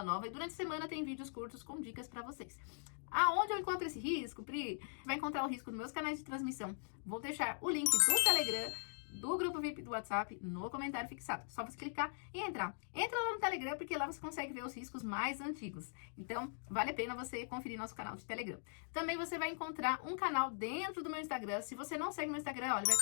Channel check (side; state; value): right; silent; digital silence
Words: nova e durante a semana tem vídeos curtos com dicas para vocês. Aonde eu encontro esse risco, Pri? Você vai encontrar o risco nos meus canais de transmissão. Vou deixar o link do Telegram, do grupo VIP do WhatsApp, no comentário fixado. Só você clicar e entrar. Entra lá no Telegram, porque lá você consegue ver os riscos mais antigos. Então, vale a pena você conferir nosso canal de Telegram. Também você vai encontrar um canal dentro do meu Instagram. Se você não segue meu Instagram, olha, vai